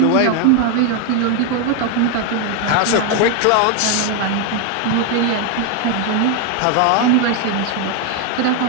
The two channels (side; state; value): both; different; correlation 0.01